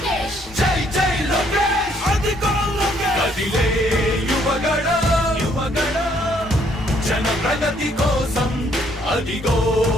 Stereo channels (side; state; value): both; normal; correlation 0.67